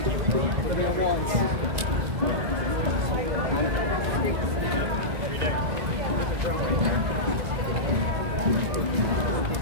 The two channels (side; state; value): left; late; 1.9 ms